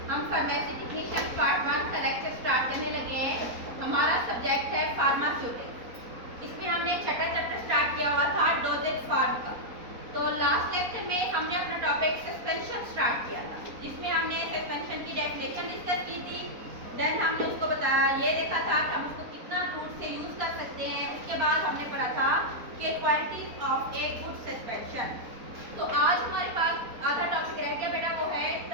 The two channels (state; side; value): late; left; 4.1 ms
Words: हम फार्मेसी टेक्नीशियन पार्ट 1 का लेक्चर स्टार्ट करने लगे हैं। हमारा सब्जेक्ट है फार्मास्यूटिक्स। इसमें हमने छठा चैप्टर स्टार्ट किया हुआ था डोजेज फार्म का। तो लास्ट लेक्चर में हमने अपना टॉपिक सस्पेंशन स्टार्ट किया था, जिसमें हमने सस्पेंशन की डेफिनेशन डिस्कस की थी। देन हमने उसको बताया, ये देखा था कि हम उसको कितना रूट से यूज कर सकते हैं। उसके बाद हमने पढ़ा था कि qualities of a good suspension. तो आज हमारे पास आधा टॉपिक रह गया बेटा, वो है